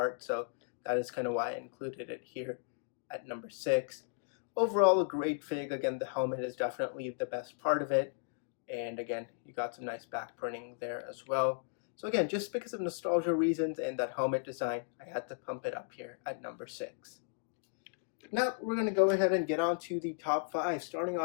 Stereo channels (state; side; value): silent; right; digital silence